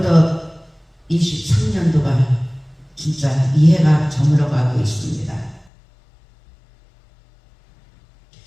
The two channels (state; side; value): drops out; right; at 5.7 s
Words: 23년도가 진짜 이해가 저물어가고 있습니다.